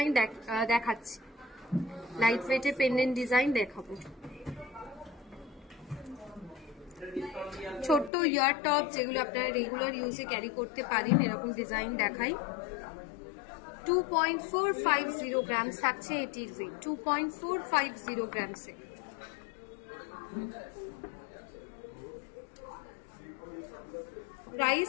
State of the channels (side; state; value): right; drops out; at 8.1 s